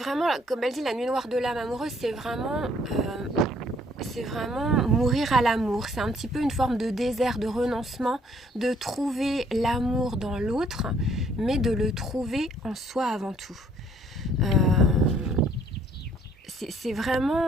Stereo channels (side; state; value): both; normal; correlation 0.63